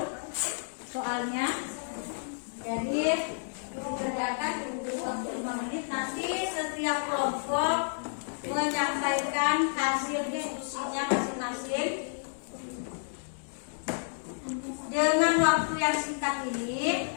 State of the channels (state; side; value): silent; right; digital silence